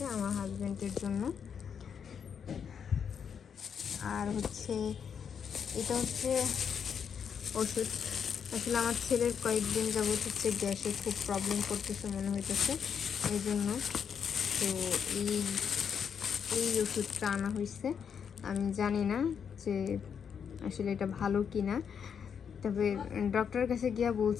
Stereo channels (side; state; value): right; quieter; 7.3 dB